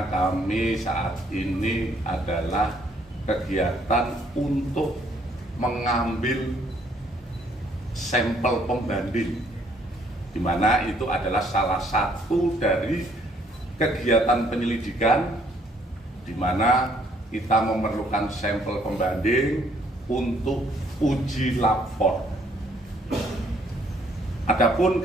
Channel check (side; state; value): both; normal; correlation 0.65